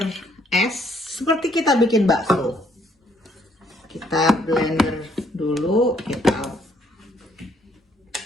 es seperti kita bikin bakso. Kita blender dulu,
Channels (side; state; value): both; normal; correlation 0.68